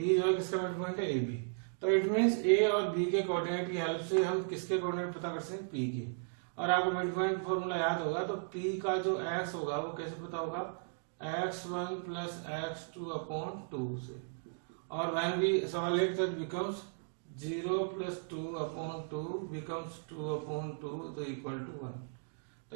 जो है किसका मिड पॉइंट है AB, तो इट मींस A और B के कोऑर्डिनेट की हेल्प से हम किसके कोऑर्डिनेट पता कर सकते हैं P के। और आपको मिड पॉइंट फॉर्मूला याद होगा तो P का जो x होगा वो कैसे पता होगा x1 + x2/2 से, और when we solve that becomes 0 + 2/2 becomes 2/2 तो इक्वल टू 1।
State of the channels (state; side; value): silent; left; digital silence